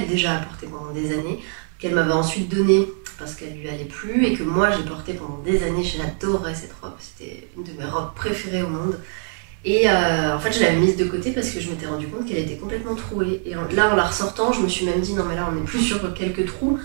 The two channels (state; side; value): silent; left; 56 dB below the other